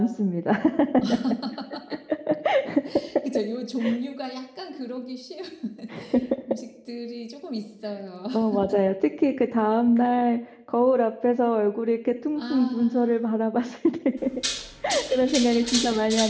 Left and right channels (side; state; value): both; identical; correlation 1.00